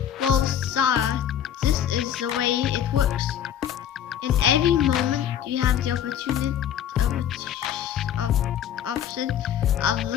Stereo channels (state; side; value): quieter; right; 9.8 dB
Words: Well, Sara, this is the way it works. In every moment, you have the option of